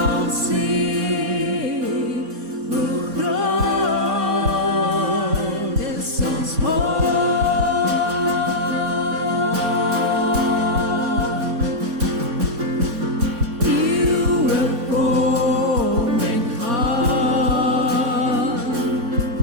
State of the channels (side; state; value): left; late; 4.2 ms